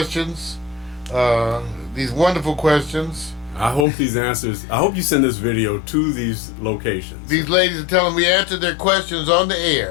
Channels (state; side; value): drops out; right; at 3.9 s